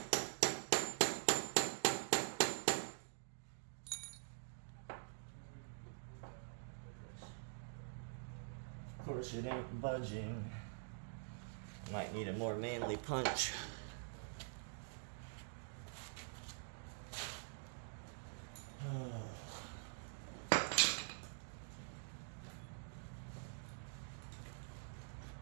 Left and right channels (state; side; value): silent; left; digital silence